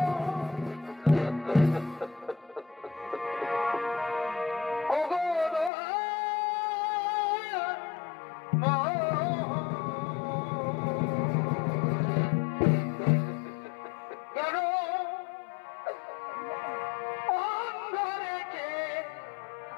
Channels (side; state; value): right; drops out; at 5.7 s